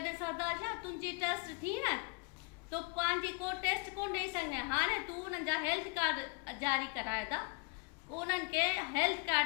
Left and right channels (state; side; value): quieter; right; 32.0 dB